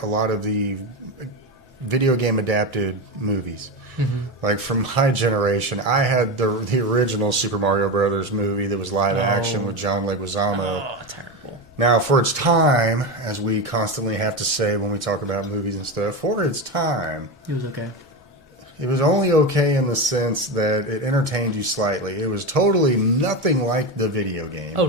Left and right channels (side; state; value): both; normal; correlation 0.18